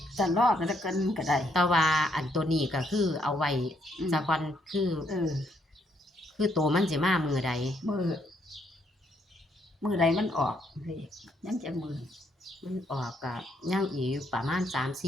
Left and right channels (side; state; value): both; normal; correlation 0.73